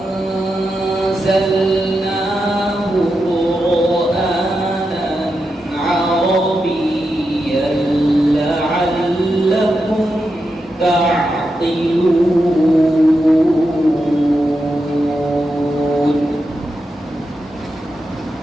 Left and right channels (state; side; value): normal; both; correlation 0.87